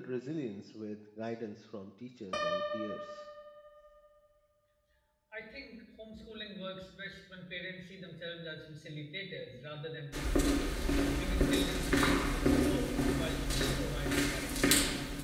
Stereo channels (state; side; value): identical; both; correlation 1.00